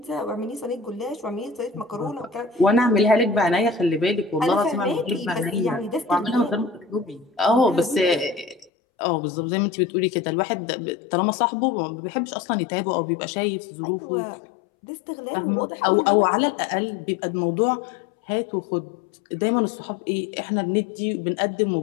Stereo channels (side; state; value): right; drops out; at 8.7 s